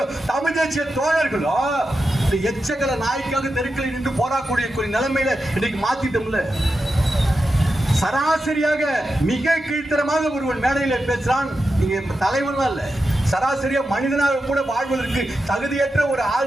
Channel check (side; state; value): both; normal; correlation 0.89